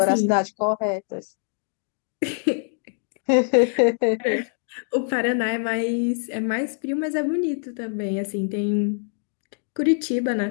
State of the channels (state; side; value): silent; right; digital silence